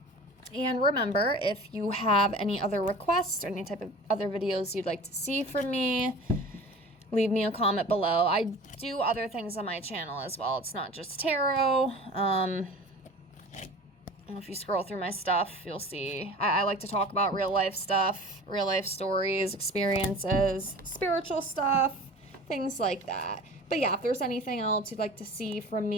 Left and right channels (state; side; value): normal; both; correlation 0.40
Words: And remember, if you have any other requests or any type of other videos you'd like to see from me, leave me a comment below. I do other things on my channel as well. It's not just tarot. If you scroll through my stuff, you'll see I like to talk about real life stuff, real life stories, experiences, spiritual stuff, things like that. But yeah, if there's anything else you'd like to see from